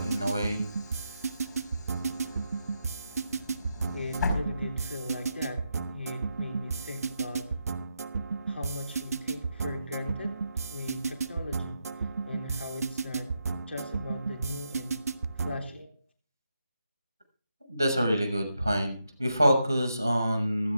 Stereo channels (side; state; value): both; inverted; correlation -0.84